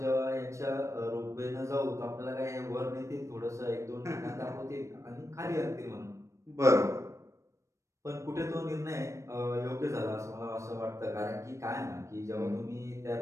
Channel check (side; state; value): left; late; 0.15 ms